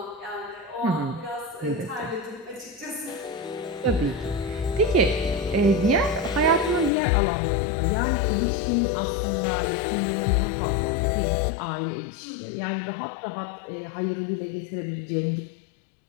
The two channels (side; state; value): right; drops out; at 6.9 s